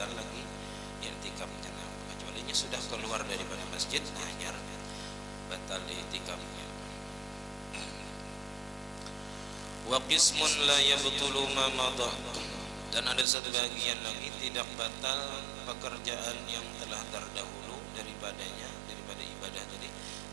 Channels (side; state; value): left; drops out; at 13.2 s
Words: lagi i'tikafnya. Kecuali sudah keluar daripada masjid, hanya batal i'tikafnya. Wa qismun la yabtulu ma madha. Dan ada satu bagian lagi tidak batal pekerjaan yang telah terdahulu daripadanya, daripada ibadah tadi,